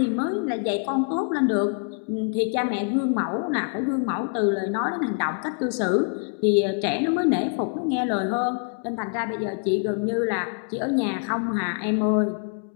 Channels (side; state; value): right; quieter; 39.3 dB